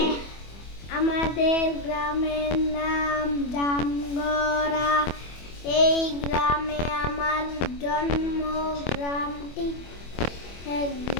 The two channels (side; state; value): right; late; 25 ms